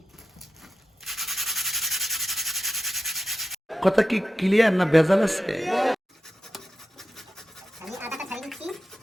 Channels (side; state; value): both; normal; correlation 0.91